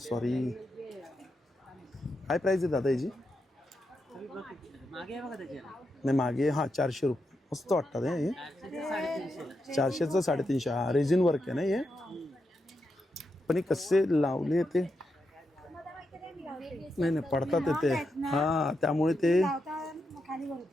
काय प्राइस आहे दादा याची? नाही मागे हां 400 रुपये. मस्त वाटतात हे. 400चं 350. हा रेझिन वर्क आहे ना हे. पण हे कसे लावले ते नाही पडतात ते. हां त्यामुळे ते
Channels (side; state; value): both; normal; correlation 0.85